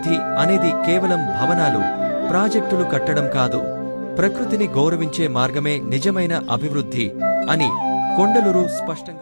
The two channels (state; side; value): inverted; both; correlation -1.00